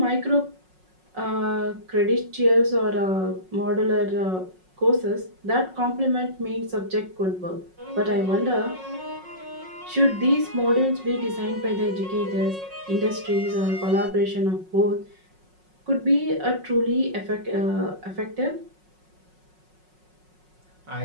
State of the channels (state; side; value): late; left; 5.5 ms